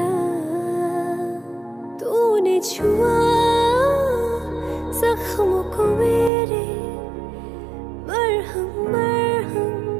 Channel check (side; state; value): left; drops out; at 6.3 s